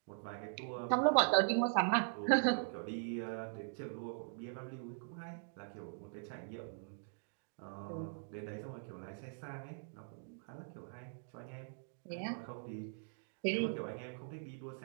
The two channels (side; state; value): left; silent; digital silence